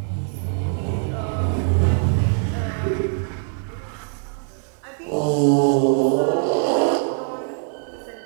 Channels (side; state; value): left; silent; 64 dB below the other